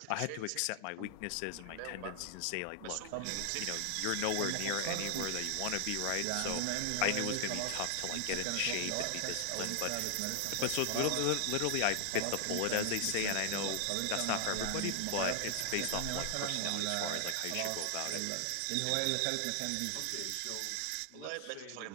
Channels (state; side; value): different; both; correlation 0.00